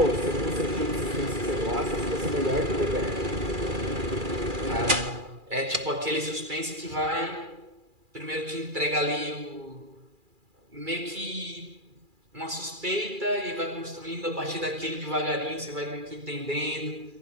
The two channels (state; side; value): late; left; 2.4 ms